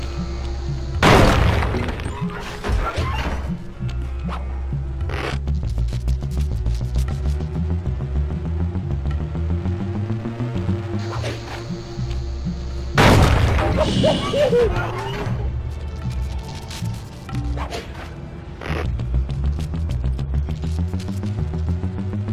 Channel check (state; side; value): identical; both; correlation 1.00